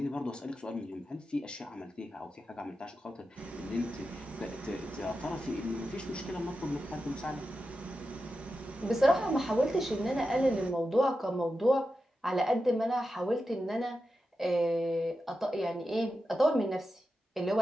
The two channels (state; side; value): normal; both; correlation 0.90